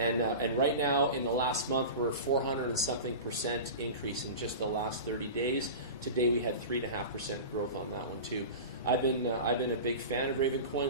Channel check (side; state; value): both; inverted; correlation -0.30